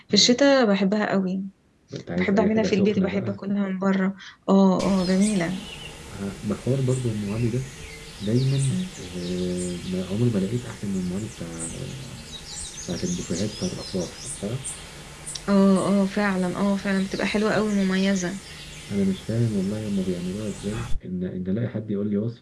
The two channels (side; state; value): both; identical; correlation 1.00